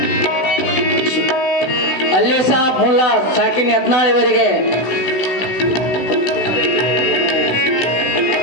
ಅಲ್ಲಿ ಸಾಬ್ ಮುಲ್ಲಾ ಸಾಕಿನ್ ಯತ್ನಾಳ್ ಇವರಿಗೆ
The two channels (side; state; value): right; late; 16 ms